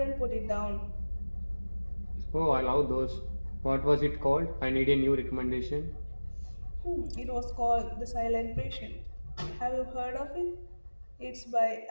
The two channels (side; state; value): both; inverted; correlation -1.00